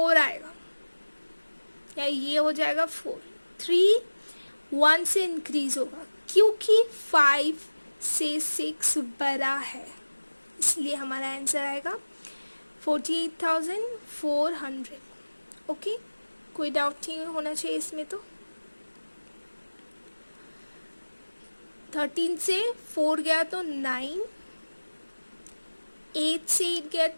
आएगा, या ये हो जाएगा 4। 3 1 से इंक्रीज होगा क्योंकि 5 से 6 बड़ा है, इसलिए हमारा आंसर आएगा 48,400। ओके, कोई डाउट नहीं होना चाहिए इसमें। तो 13 से 4 गया तो 9, 8 से 8 गया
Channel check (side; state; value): both; inverted; correlation -1.00